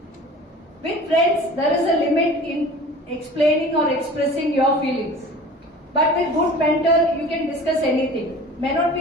With friends, there is a limit in explaining or expressing your feelings. But with good mentor, you can discuss anything. May not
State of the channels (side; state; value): both; normal; correlation 0.41